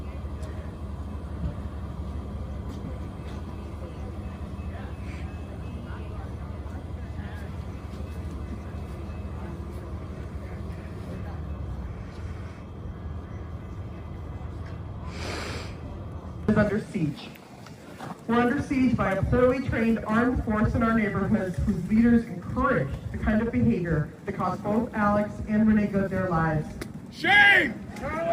Is under siege. We're under siege by a poorly trained armed force in our neighborhoods whose leaders encourage the kind of behavior that cost both Alex and Renee Good their lives. Shame!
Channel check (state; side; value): identical; both; correlation 1.00